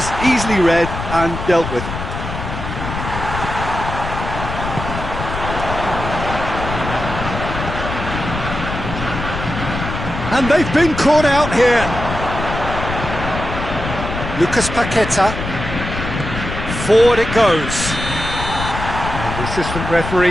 easily read and dealt with. And they've been caught out here. Lucas Paqueta. Forward it goes. And the assistant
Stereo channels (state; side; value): noise; left; rumble, 6 dB below the sound